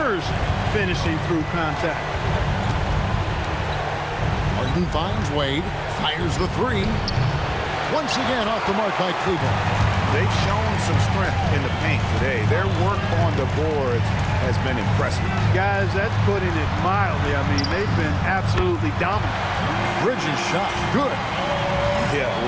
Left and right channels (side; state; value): both; identical; correlation 1.00